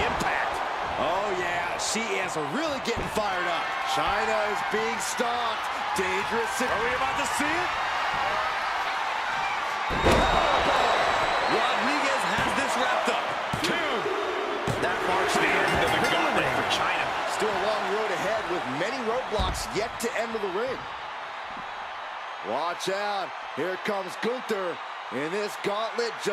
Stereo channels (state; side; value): identical; both; correlation 1.00